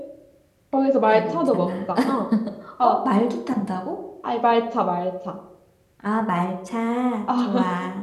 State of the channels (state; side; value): identical; both; correlation 1.00